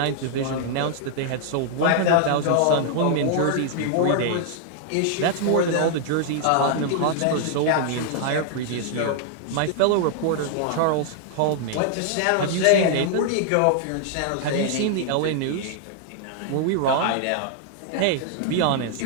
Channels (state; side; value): different; both; correlation 0.00